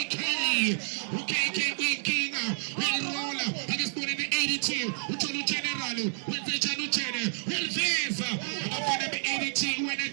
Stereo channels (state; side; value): silent; left; 58 dB below the other